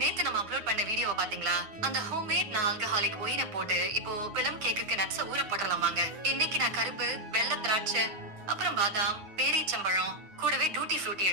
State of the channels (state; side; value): late; left; 9.5 ms